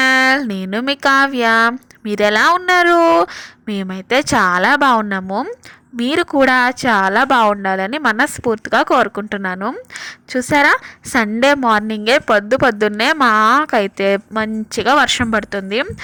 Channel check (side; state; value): both; identical; correlation 1.00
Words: నేను మీ కావ్య. మీరు ఎలా ఉన్నారు? మేమైతే చాలా బాగున్నాము. మీరు కూడా చాలా బాగుండాలని మనస్ఫూర్తిగా కోరుకుంటున్నాను. చూసారా, సండే మార్నింగే పొద్దున్నే మాకైతే మంచిగా వర్షం పడుతుంది.